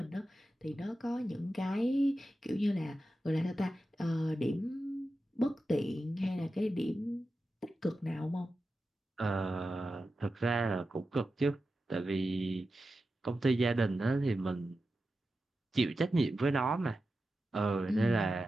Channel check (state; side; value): normal; both; correlation 0.92